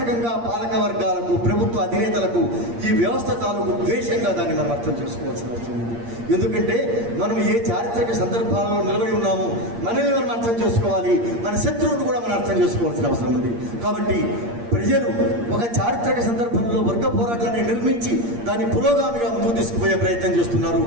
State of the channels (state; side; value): late; left; 8.6 ms